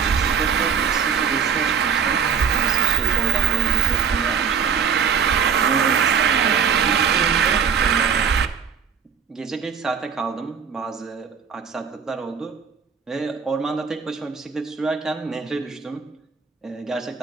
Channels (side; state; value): left; quieter; 6.8 dB